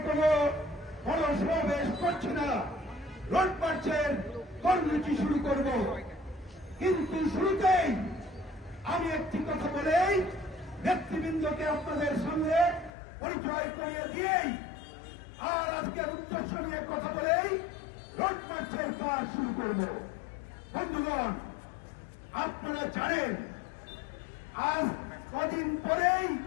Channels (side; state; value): right; drops out; at 12.9 s